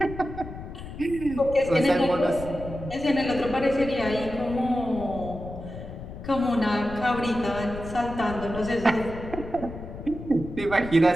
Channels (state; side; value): noise; left; rumble, 11 dB below the sound